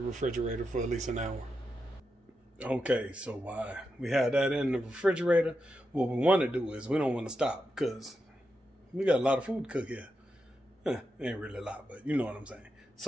for at least an hour. Okay, so while we have that in the refrigerator, what we want to do is we don't want to stop, because we got a lot of food to cook here. Ain't really a lot, but you know what I'm saying.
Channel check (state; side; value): normal; both; correlation 0.87